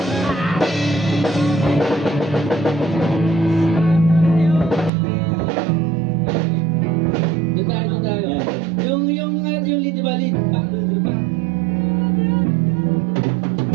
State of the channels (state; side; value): drops out; left; at 4.9 s